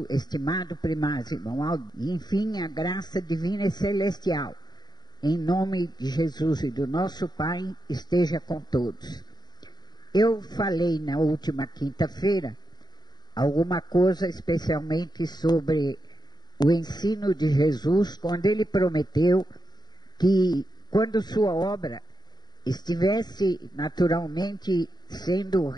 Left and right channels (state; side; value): late; right; 0.20 ms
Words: estimado primaz, irmão Aldo, e enfim a graça divina e celestial, em nome de Jesus e do nosso Pai, esteja com todos. Eu falei na última quinta-feira alguma coisa especialmente sobre o ensino de Jesus, quando ele prometeu que quando sua obra estivesse naturalmente sendo